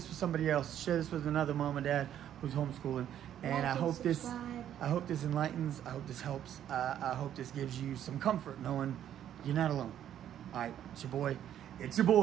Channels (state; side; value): quieter; left; 10.6 dB